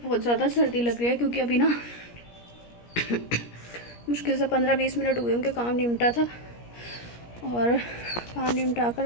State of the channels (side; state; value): right; late; 17 ms